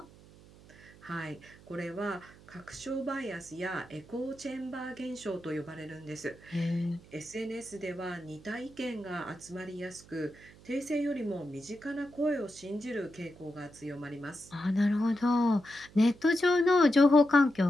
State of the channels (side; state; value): right; noise; hum, 22 dB below the sound